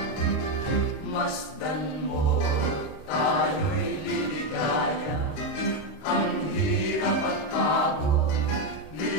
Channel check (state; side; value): late; right; 26 ms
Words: Masdan mo, tayo'y liligaya. Ang hirap at pagod,